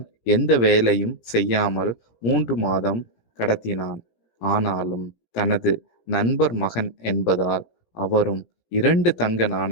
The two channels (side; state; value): right; late; 17 ms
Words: எந்த வேலையும் செய்யாமல் 3 மாதம் கடத்தினான். ஆனாலும் தனது நண்பர் மகன் என்பதால் அவரும் 2 தங்க